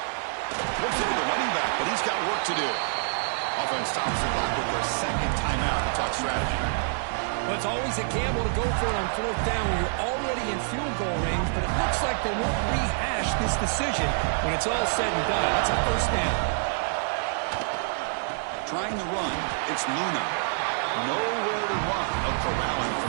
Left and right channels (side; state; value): left; silent; digital silence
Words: Looks into the running back, but he's got work to do. Offense stops the clock with their second timeout to talk strategy. Well, it's always a gamble to go for it on fourth down when you're already in field goal range, but it looks like they won't rehash this decision when it's all said and done. That's a first down. Trying to run, it's Luna. Nowhere to run. A corralling